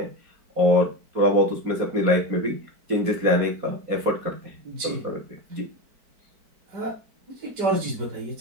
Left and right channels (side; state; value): left; late; 4.5 ms